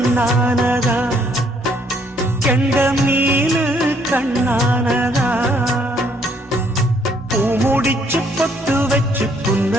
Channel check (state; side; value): normal; both; correlation 0.67